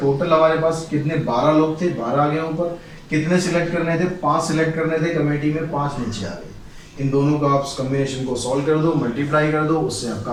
हमारे पास कितने, 12 लोग थे, 12 आ गए ऊपर। कितने सिलेक्ट करने थे, 5 सिलेक्ट करने थे कमेटी में, 5 नीचे आ गए। इन दोनों का आप कॉम्बिनेशन को सॉल्व कर दो, मल्टीप्लाई कर दो, उससे आपका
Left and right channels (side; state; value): both; identical; correlation 1.00